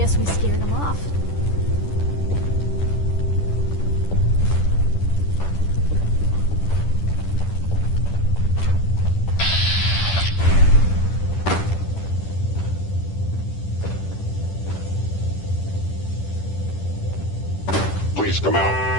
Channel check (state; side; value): late; right; 10 ms